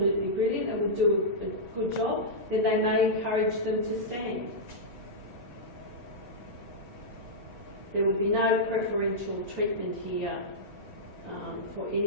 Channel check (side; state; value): both; normal; correlation -0.11